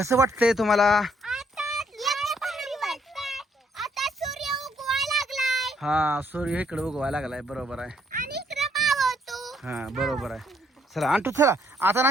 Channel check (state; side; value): normal; both; correlation 0.69